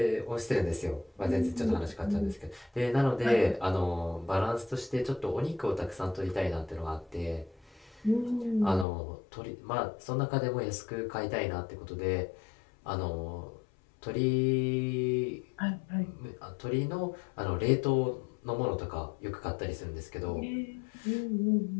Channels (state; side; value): drops out; right; at 8.8 s